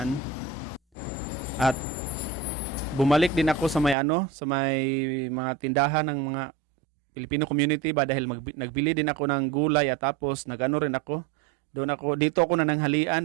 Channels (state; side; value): drops out; left; at 4.0 s